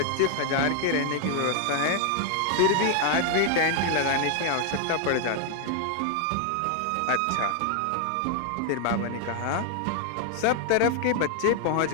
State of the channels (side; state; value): both; different; correlation 0.00